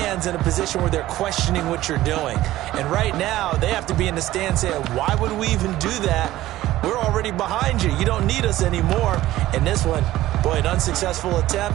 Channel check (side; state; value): left; quieter; 15.5 dB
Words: in a position where they're questioning what you're doing. And right now, they have to be in the stand saying, why would we even do that? We're already behind you. You don't need us anymore. And this one, boy, an unsuccessful